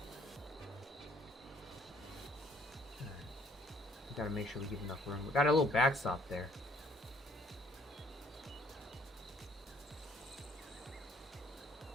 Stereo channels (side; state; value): both; normal; correlation 0.62